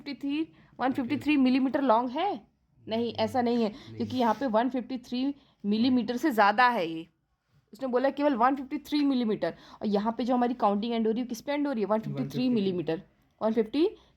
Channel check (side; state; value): both; identical; correlation 1.00